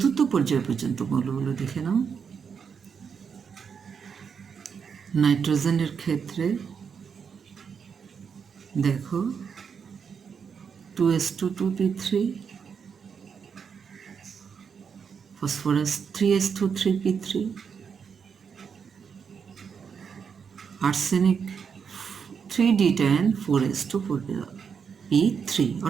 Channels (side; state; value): left; quieter; 6.5 dB